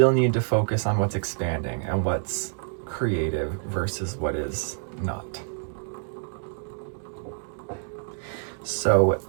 need to focus on what's expanding and what's creative versus what is not. So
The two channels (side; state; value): left; silent; digital silence